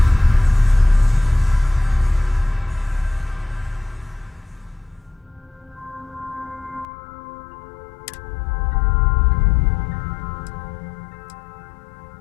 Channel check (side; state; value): right; drops out; at 6.9 s